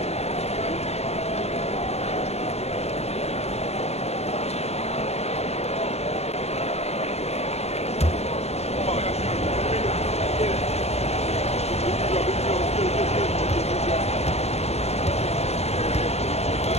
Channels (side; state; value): right; late; 0.31 ms